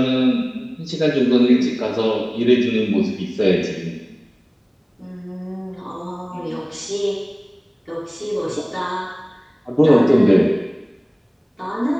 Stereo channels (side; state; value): both; identical; correlation 1.00